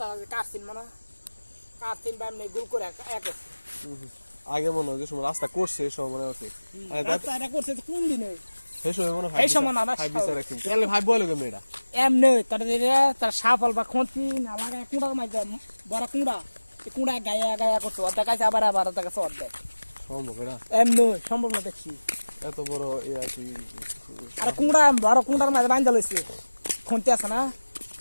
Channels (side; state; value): both; inverted; correlation -1.00